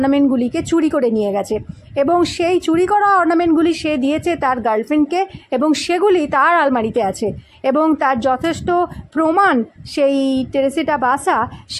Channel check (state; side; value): identical; both; correlation 1.00